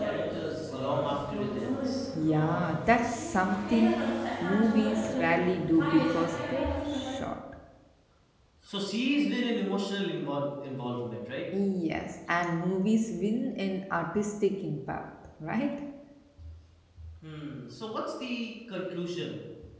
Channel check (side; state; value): both; identical; correlation 1.00